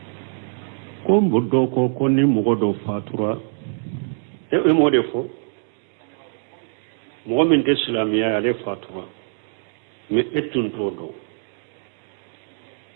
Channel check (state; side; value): silent; left; digital silence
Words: do ko ni mo do fatura e mo defo mo min de islamia ale fatura me etun do